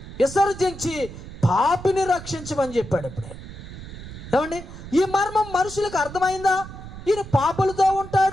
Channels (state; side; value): noise; right; rumble, 13 dB below the sound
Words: విసర్జించి పాపిని రక్షించమని చెప్పాడు. ఇప్పుడే ఏమండి ఈ మర్మం మనుషులకు అర్థమైందా? ఈయన పాపులతో